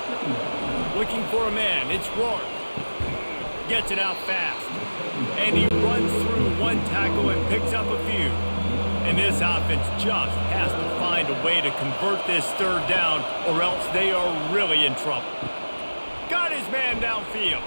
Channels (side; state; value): both; inverted; correlation -1.00